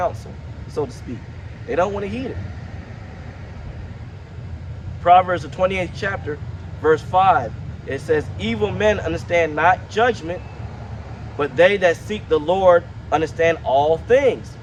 so to speak. They don't want to heed it. Proverbs, the 28th chapter, verse 5, it says, evil men understand not judgment, but they that seek the Lord understand all things.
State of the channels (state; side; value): identical; both; correlation 1.00